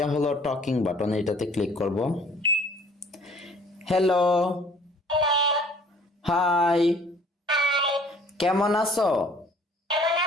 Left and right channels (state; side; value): normal; both; correlation 0.54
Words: হলো টকিং বাটন, এটাতে ক্লিক করব। হ্যালো, হাই, কেমন আছো?